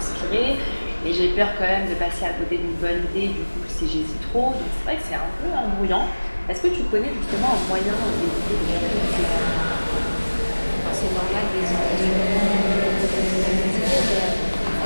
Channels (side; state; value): both; inverted; correlation -1.00